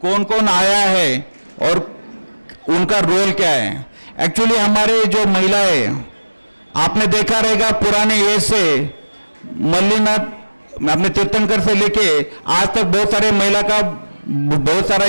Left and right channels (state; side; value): inverted; both; correlation -1.00